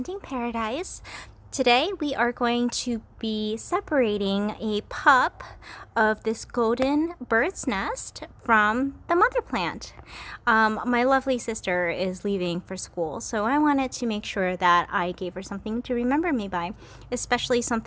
Paradise. Today we are going to be separating a pup of this golden bird's nest from the mother plant. My lovely sister is leaving for school, so I wanted to make sure that I gave her something to remember me by, especially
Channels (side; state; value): both; identical; correlation 1.00